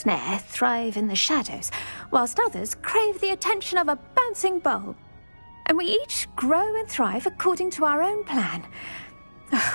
thrive in the shadows, whilst others crave the attention of a bouncing bulb. And we each grow and thrive according to our own plan.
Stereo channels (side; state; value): both; inverted; correlation -1.00